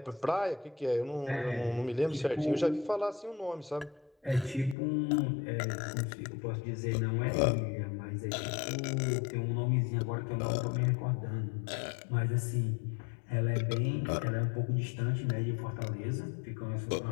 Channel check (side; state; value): right; drops out; at 4.8 s